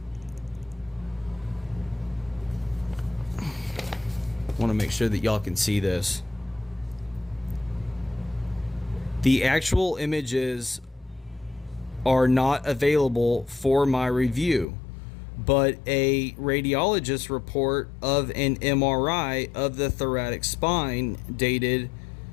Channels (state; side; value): drops out; right; at 14.7 s